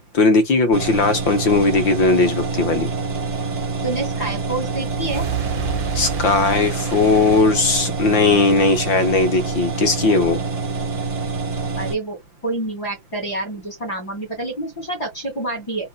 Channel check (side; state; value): right; late; 5.8 ms